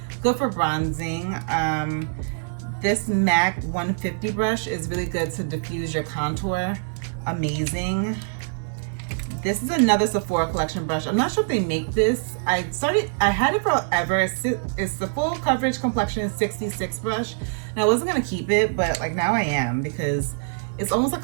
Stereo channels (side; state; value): left; silent; 62 dB below the other